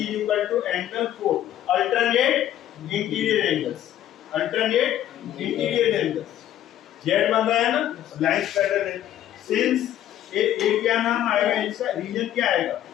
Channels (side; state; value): right; quieter; 11.9 dB